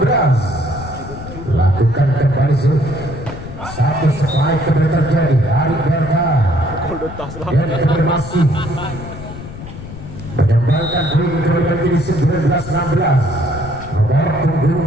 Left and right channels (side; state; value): left; noise; rumble, 11 dB below the sound